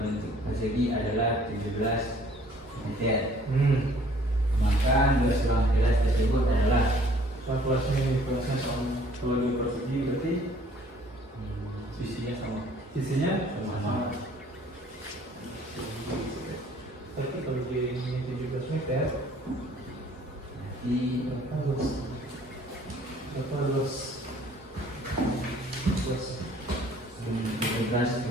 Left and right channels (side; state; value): both; normal; correlation 0.57